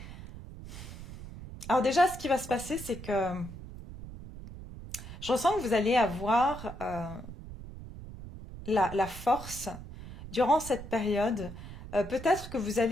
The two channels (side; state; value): right; noise; rumble, 13 dB below the sound